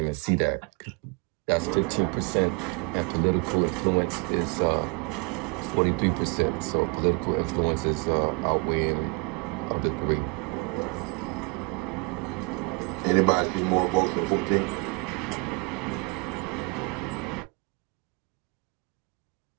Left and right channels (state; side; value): quieter; left; 30.0 dB